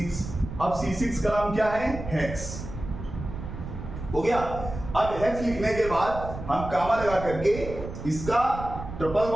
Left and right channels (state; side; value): noise; right; rumble, 9 dB below the sound